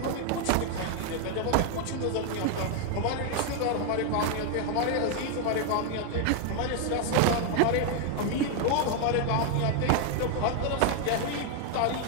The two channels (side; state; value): both; different; correlation 0.00